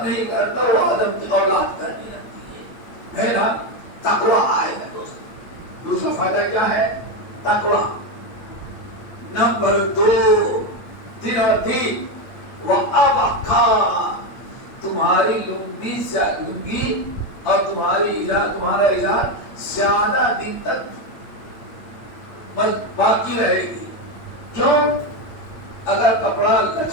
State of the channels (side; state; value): right; late; 8.7 ms